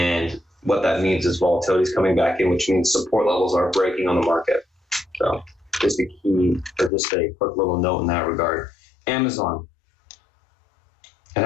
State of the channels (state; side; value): drops out; right; at 6.9 s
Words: what that means is volatility is coming back in, which means support levels are breaking on the market. So just a quick little note in that regard. Amazon. It